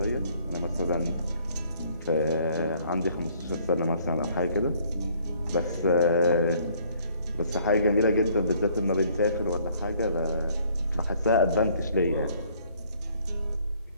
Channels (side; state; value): both; inverted; correlation -0.61